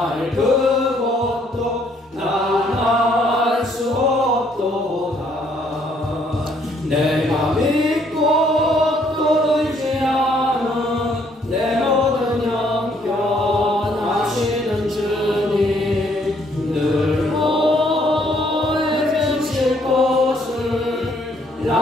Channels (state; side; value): normal; both; correlation 0.67